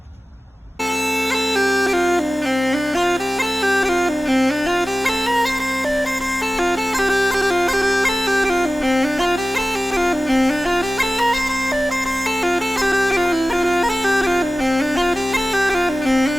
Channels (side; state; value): both; normal; correlation 0.96